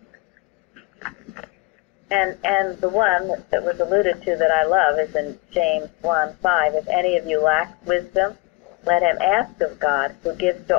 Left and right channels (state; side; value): quieter; right; 22.6 dB